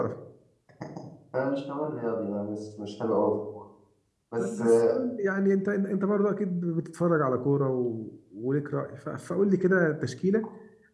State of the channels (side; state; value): both; identical; correlation 1.00